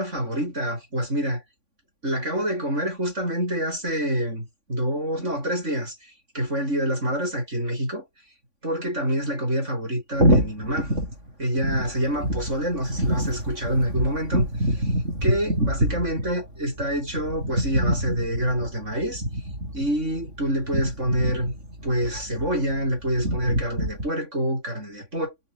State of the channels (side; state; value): left; late; 3.5 ms